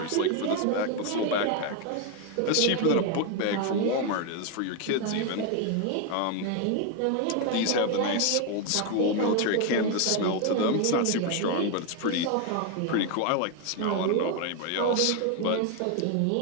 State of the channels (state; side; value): different; both; correlation 0.01